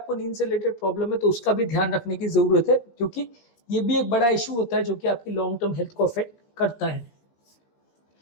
नींद से रिलेटेड प्रॉब्लम है तो उसका भी ध्यान रखने की ज़रूरत है, क्योंकि ये भी एक बड़ा इशू होता है जो कि आपकी लॉन्ग टर्म हेल्थ को अफेक्ट करता है।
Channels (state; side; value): late; right; 17 ms